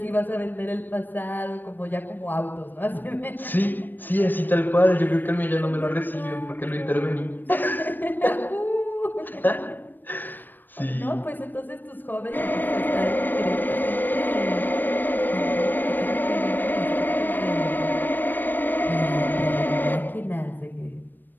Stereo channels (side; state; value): right; late; 0.091 ms